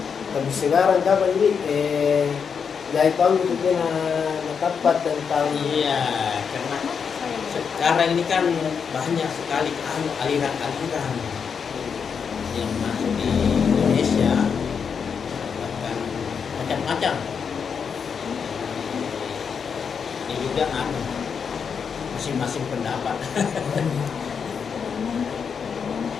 Tapi sekarang kapan ini jahit tahun itu tepat tentang Iya, karena sekarang ini kan banyak sekali aliran-aliran yang masuk di Indonesia, bahkan macam-macam. Ini juga masing-masing pendapat.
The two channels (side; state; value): right; quieter; 6.5 dB